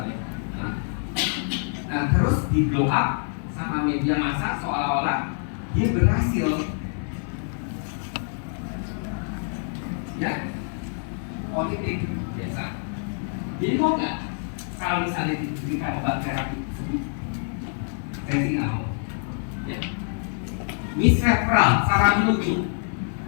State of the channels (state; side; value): silent; right; 61 dB below the other